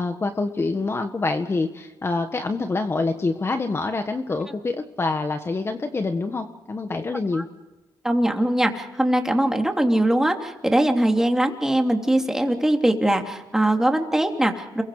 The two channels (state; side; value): normal; both; correlation 0.92